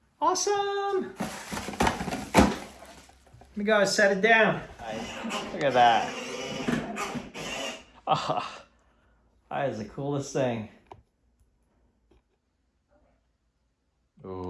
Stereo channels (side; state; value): both; identical; correlation 1.00